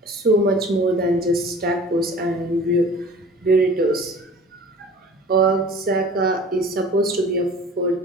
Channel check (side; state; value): both; normal; correlation 0.44